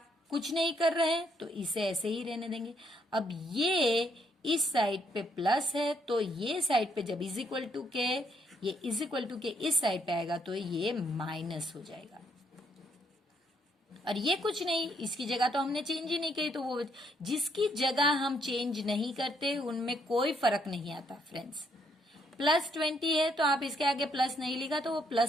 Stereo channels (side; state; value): both; normal; correlation 0.72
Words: कुछ नहीं कर रहे हैं तो इसे ऐसे ही रहने देंगे। अब ये इस साइड पे प्लस है तो ये साइड पे जब इज इक्वल टू के, ये इज इक्वल टू के इस साइड पे आएगा तो ये माइनस हो जाएगा। और ये कुछ नहीं, इसकी जगह तो हमने चेंज ही नहीं की, तो वो जिसकी जगह हम चेंज नहीं करते उनमें कोई फर्क नहीं आता फ्रेंड्स। प्लस 20 है तो आप इसके आगे प्लस नहीं लिखा तो वो